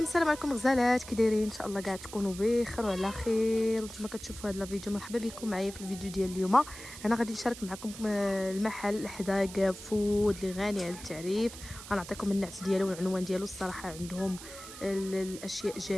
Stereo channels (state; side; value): noise; right; hiss, 14 dB below the sound